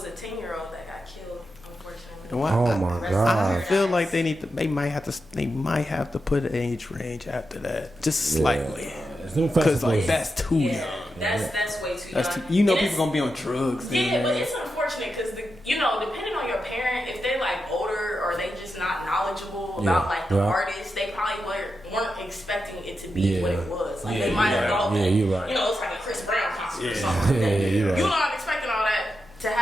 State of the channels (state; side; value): normal; both; correlation 0.88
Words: a 10-year-old that got killed, unfortunately. Oh my I god. feel like they might have to put an age range after that, just slightly, because that's too young. That's way too young. You know, And people gonna be on drugs. Yeah, but it's unfortunate because depending on your parent, if they're like older or they just not knowledgeable about like the artist, they probably weren't expecting it to be what it was. Like they might have thought that you're right. it's like a Chris Brown concert or something like that. You're right. You're not expecting all that to